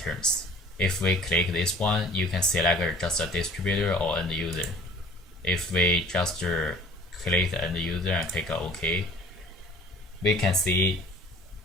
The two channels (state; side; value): normal; both; correlation 0.49